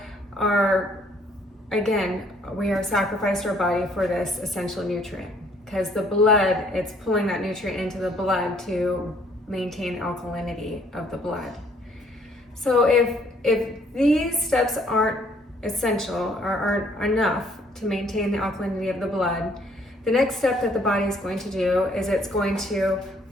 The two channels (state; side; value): normal; both; correlation 0.63